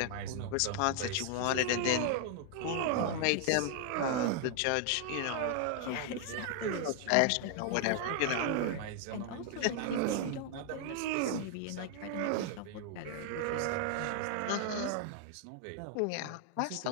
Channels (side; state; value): both; different; correlation 0.00